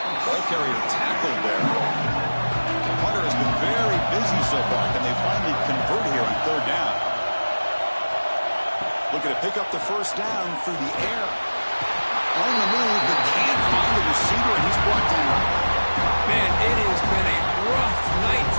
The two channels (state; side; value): inverted; both; correlation -1.00